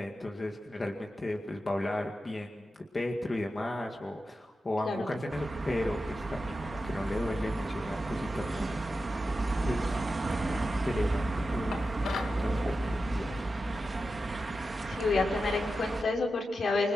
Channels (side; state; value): both; normal; correlation 0.91